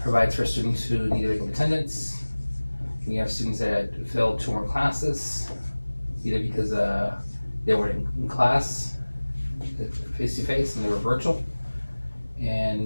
provides for students who need regular attendance. We have students that failed 2 more classes, either because they were in class face to face and they were virtual,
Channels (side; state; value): both; inverted; correlation -1.00